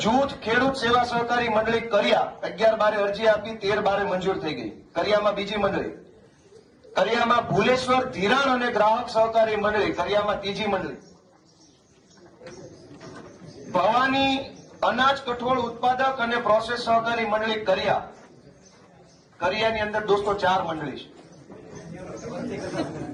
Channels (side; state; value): both; identical; correlation 1.00